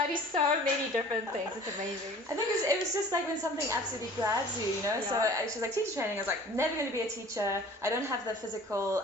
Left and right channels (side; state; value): both; normal; correlation 0.47